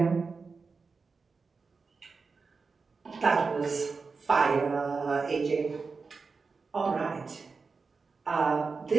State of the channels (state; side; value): quieter; left; 4.6 dB